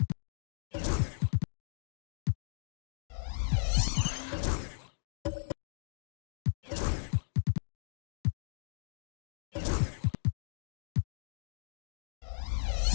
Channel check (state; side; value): silent; right; digital silence